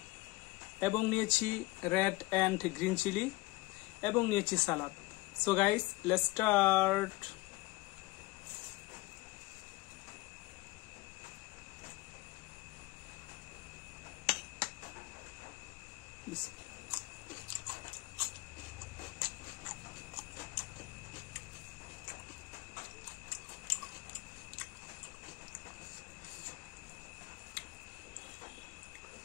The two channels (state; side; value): quieter; right; 21.7 dB